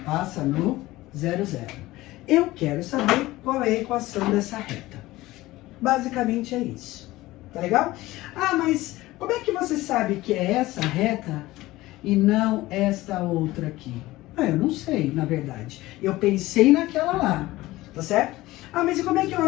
passa no 0, 0. Eu quero saber qual é a equação dessa reta. Basicamente é isso. Tá legal? Ah, mas como é que você sabe que é essa reta e não esta outra aqui? Ah, eu não sei, na verdade. Eu pensei naquela lá, tá certo? Ah, mas e como é que eu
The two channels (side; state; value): right; quieter; 18.0 dB